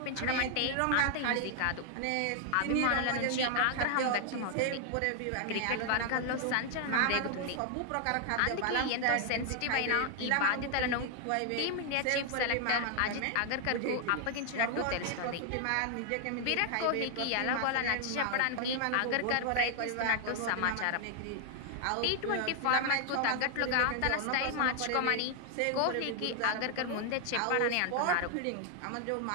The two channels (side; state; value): both; different; correlation 0.00